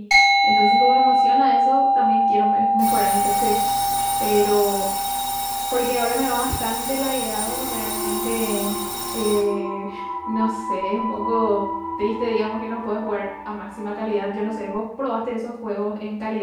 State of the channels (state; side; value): identical; both; correlation 1.00